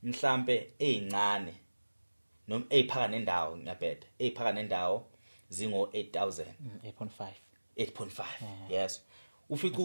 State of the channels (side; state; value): both; inverted; correlation -1.00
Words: mhlambe ezincane noma eziphaka nendawo ngiyabheda eziphaka nendawo zingo 8,000 8.5 yes ufika